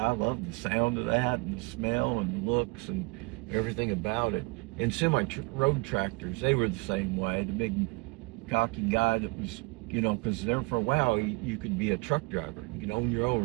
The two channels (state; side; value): quieter; left; 29.2 dB